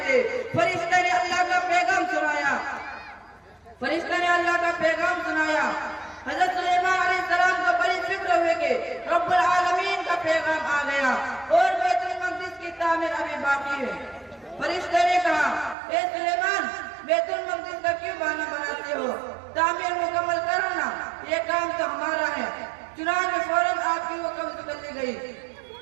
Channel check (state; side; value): drops out; left; at 15.8 s